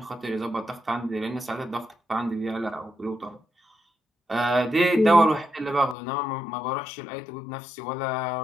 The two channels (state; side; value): drops out; right; at 6.0 s